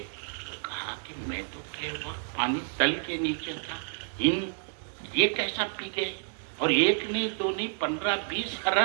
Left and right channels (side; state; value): left; silent; 58 dB below the other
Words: کہا کہ میں تو کہ وقت پانی تل کے نیچے تھا، یہ کیسا پی گئے؟ اور ایک نہیں دو نہیں 15-20